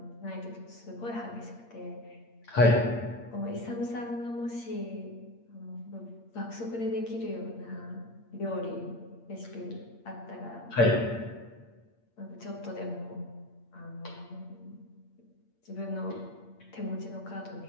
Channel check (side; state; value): right; late; 8.6 ms